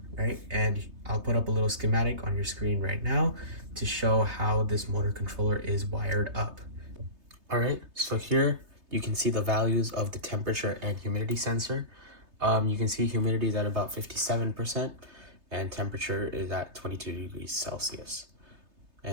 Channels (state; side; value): late; left; 3.3 ms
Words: Right? And I'll put up a little schematic on your screen right now to show how this motor controller is wired up. All right, so here you can see the values of the temperature and humidity sensor. You can see humidity is at about 57% and temperature is at 22 degrees Celsius.